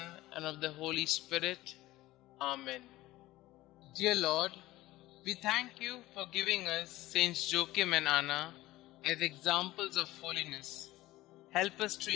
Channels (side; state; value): right; quieter; 17.3 dB